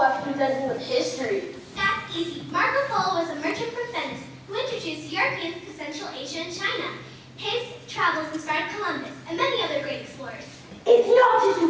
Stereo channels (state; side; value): identical; both; correlation 1.00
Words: after presenting with history? That's easy. Marco Polo was a merchant from Venice who introduced Europeans to Central Asia and China. His travels inspired Columbus and many other great explorers. It's not just a